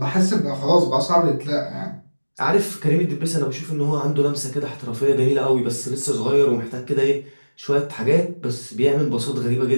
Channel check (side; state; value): both; inverted; correlation -1.00